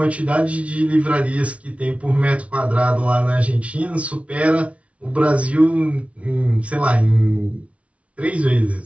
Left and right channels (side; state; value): left; late; 0.064 ms